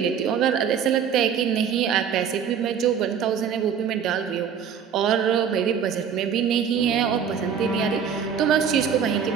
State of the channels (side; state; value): left; quieter; 7.6 dB